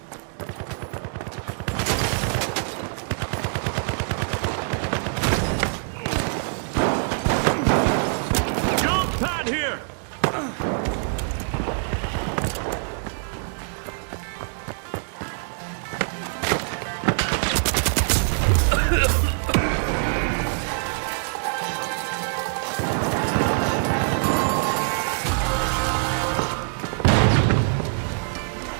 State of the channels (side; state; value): left; silent; 62 dB below the other